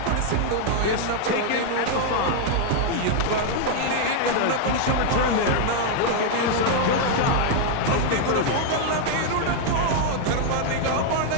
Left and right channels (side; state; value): both; different; correlation 0.00